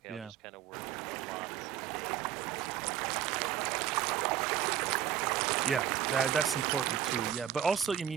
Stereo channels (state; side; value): quieter; left; 10.3 dB